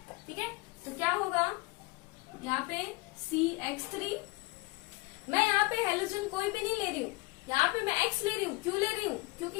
ठीक है, तो क्या होगा यहाँ पे CH3। मैं यहाँ पे हेलोजन कोई भी नहीं ले रही हूँ, यहाँ पे मैं X ले रही हूँ। क्यों ले रही हूँ,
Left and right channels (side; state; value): right; quieter; 24.0 dB